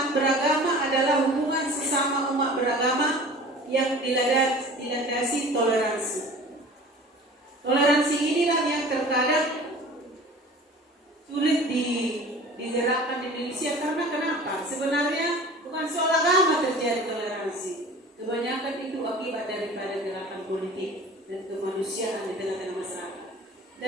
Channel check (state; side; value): normal; both; correlation 0.42